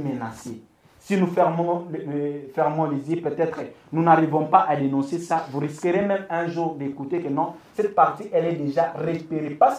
Si nous fermons les yeux, peut-être nous n'arrivons pas à dénoncer ça. Vous risquerez même un jour d'écouter que non, cette partie, elle est déjà récupérée, pas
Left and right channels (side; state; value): both; identical; correlation 1.00